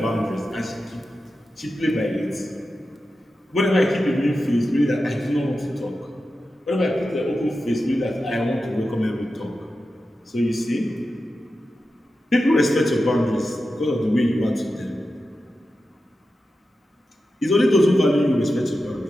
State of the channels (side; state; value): both; normal; correlation 0.91